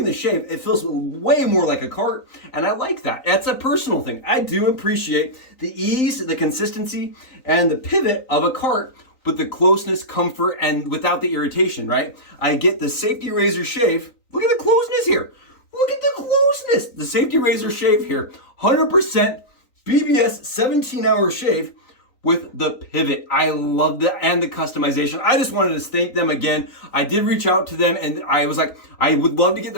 the shave, it feels way more like a cart, and I like that. That's a personal thing. I do appreciate the ease, the consistency, and the pivot of a cart, but the closeness, comfort, and without the irritation, right? I get the safety razor shave. Look at the closeness here. Look at the closeness. The safety razor shave here, 100% BBS 17-hour shave with the pivot. I love that, and the customization. I just wanted to thank them again. I did reach out to them and I was like, I would love to get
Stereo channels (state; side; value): late; right; 3.9 ms